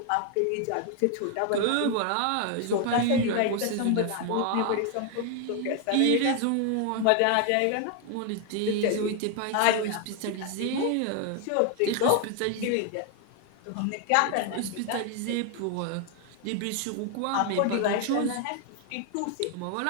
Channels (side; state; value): both; different; correlation 0.01